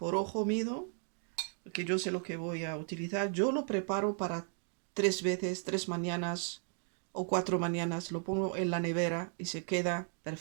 ojo mido, porque yo sé lo que voy a utilizar. Yo lo preparo para 3 veces, 3 mañanas o 4 mañanas. Lo pongo en la nevera y se queda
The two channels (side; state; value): left; silent; 54 dB below the other